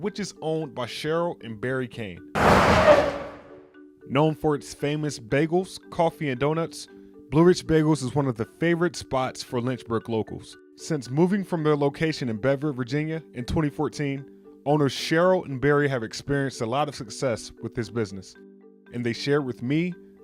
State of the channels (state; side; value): identical; both; correlation 1.00